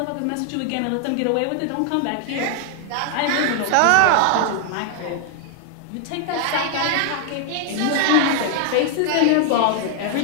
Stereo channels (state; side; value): different; both; correlation 0.00